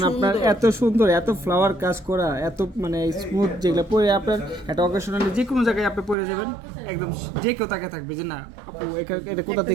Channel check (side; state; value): left; drops out; at 6.2 s